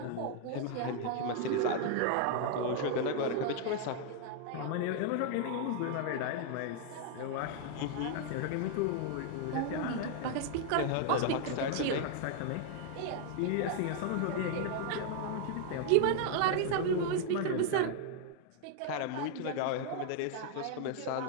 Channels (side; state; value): both; different; correlation 0.00